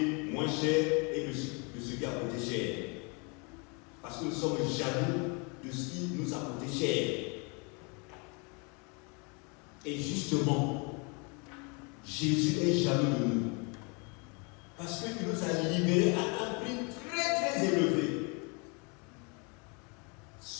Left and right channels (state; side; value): quieter; right; 32.5 dB